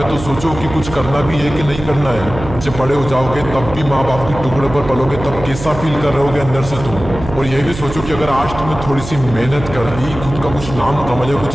तो सोचो कि कुछ करना भी है कि नहीं करना है। जब बड़े हो जाओगे तब भी माँ बाप के टुकड़े पर पलोगे, तब कैसा फील कर रहे होगे अंदर से तुम। और ये भी सोचो कि अगर आज तुमने थोड़ी सी मेहनत कर ली, खुद का कुछ नाम कमा लिया, कुछ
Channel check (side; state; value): right; noise; hum, 10 dB below the sound